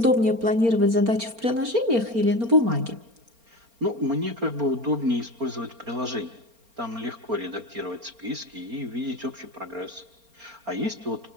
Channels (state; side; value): late; left; 4.3 ms